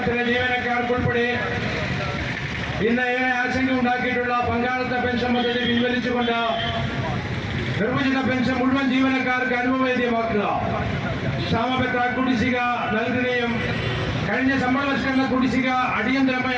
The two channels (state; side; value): identical; both; correlation 1.00